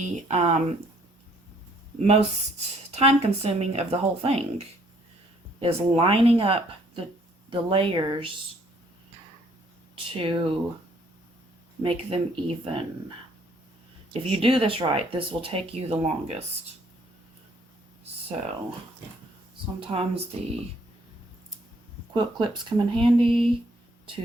most time-consuming of the whole thing, is lining up the layers to make them even. If you do this right, this will take you the longest. So sometimes the quilt clips come in handy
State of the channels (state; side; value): normal; both; correlation 0.64